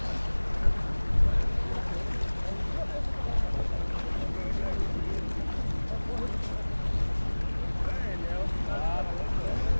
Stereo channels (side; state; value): both; inverted; correlation -1.00